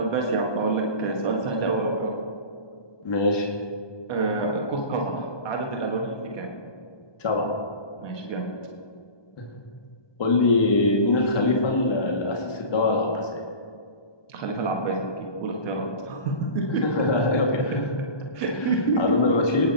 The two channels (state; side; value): late; right; 1.2 ms